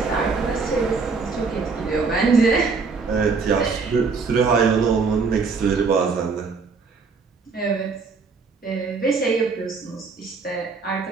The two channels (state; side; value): quieter; left; 4.7 dB